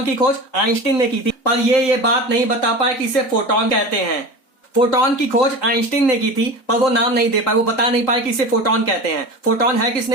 की खोज आइंस्टीन ने की थी, पर ये बात नहीं बता पाए कि इसे फोटॉन कहते हैं। फोटॉन की खोज आइंस्टीन ने की थी, पर वो नाम नहीं दे पाए, वो बता नहीं पाए कि इसे फोटॉन कहते हैं। फोटॉन है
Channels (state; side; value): late; right; 3.8 ms